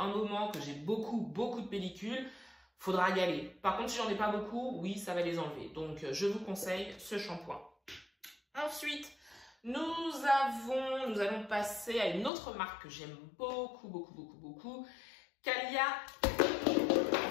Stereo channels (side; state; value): right; drops out; at 12.3 s